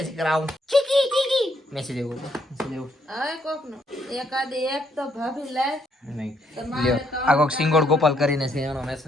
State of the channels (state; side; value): normal; both; correlation 0.72